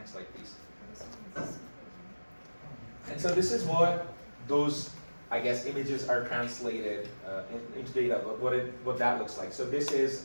slide, please. And so this is what those, I guess, images are translated into data, what that looks like. So this is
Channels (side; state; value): both; inverted; correlation -1.00